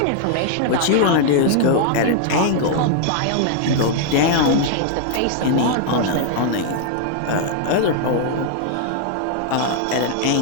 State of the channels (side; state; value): both; different; correlation 0.00